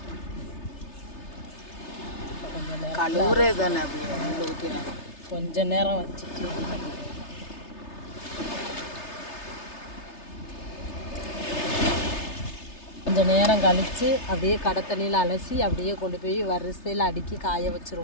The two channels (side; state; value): right; late; 3.3 ms